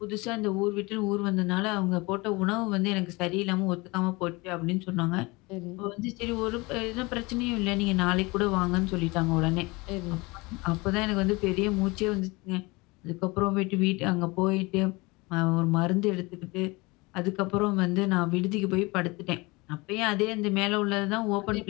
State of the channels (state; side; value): quieter; right; 24.5 dB